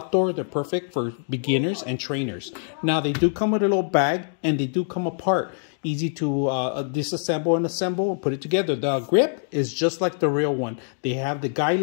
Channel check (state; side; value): silent; right; digital silence